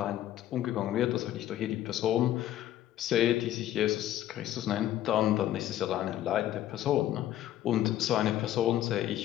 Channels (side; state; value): right; quieter; 12.8 dB